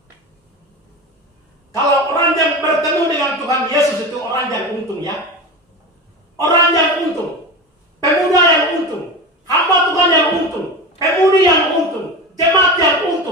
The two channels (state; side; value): normal; both; correlation 0.26